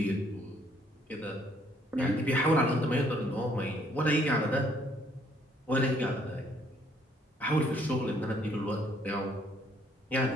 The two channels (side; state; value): both; normal; correlation 0.65